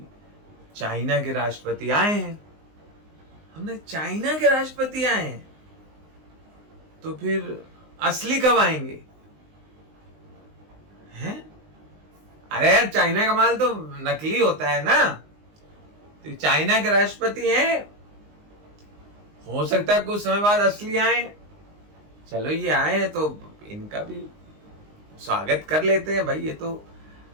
चाइना के राष्ट्रपति आए हैं। हमने चाइना के राष्ट्रपति आए हैं तो फिर असली कब आएंगे हैं? अरे यार चाइना का माल तो नकली होता है ना। तो चाइना के राष्ट्रपति हैं, हो सकता है कुछ समय बाद असली आए। चलो ये आए हैं तो इनका भी स्वागत कर लेते हैं भाई। ये तो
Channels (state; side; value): late; left; 19 ms